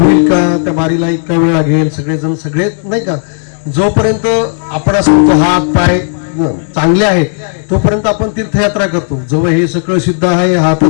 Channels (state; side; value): silent; right; digital silence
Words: होईल का, त्या बारीला इतका वेळ लागेल, सगळेजण सगळे नाही का, जोपर्यंत आपण असं म्हणतो हात पाय चांगले आहेत तोपर्यंत आपण तीर्थयात्रा करतो. जेव्हा हे सगळं सिद्ध आहे, हात